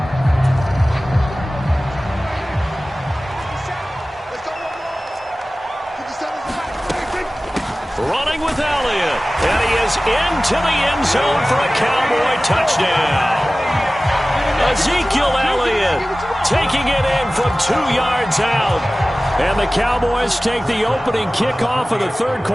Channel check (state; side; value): normal; both; correlation 0.97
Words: Running with Elliott, and he is into the end zone for a Cowboy touchdown. Ezekiel Elliott taking it in from 2 yards out. And the Cowboys take the opening kickoff of the 3rd